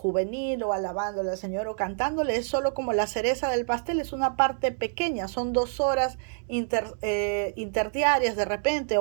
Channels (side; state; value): left; silent; digital silence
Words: o alabándole al Señor o cantándole, es solo como la cereza del pastel, es una parte pequeña, son 2 horas interdiarias de repente,